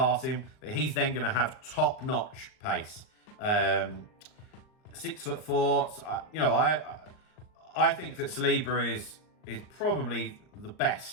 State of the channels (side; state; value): right; late; 39 ms